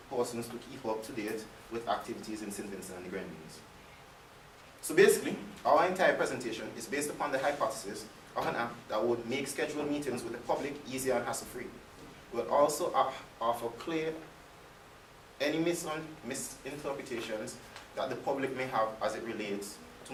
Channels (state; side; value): identical; both; correlation 1.00